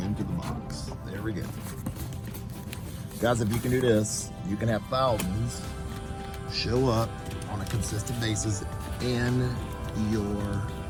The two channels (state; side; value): identical; both; correlation 1.00